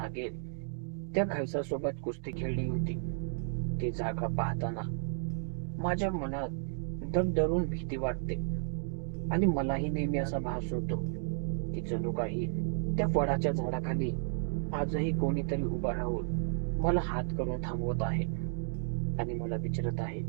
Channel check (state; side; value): silent; left; digital silence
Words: त्या खैसासोबत कुस्ती खेळली होती, ती जागा पाहताना माझ्या मनात धडधडून भीती वाटते. आणि मलाही नेहमी असा भास होतो की जणू काही त्या वडाच्या झाडाखाली आजही कोणीतरी उभा राहून मला हात करून थांबवत आहे आणि मला विचारत आहे,